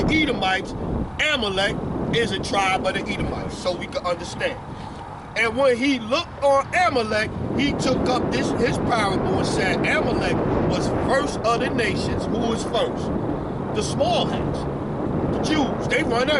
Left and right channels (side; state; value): both; identical; correlation 1.00